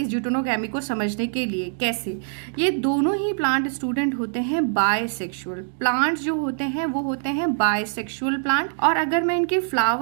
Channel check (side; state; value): left; silent; digital silence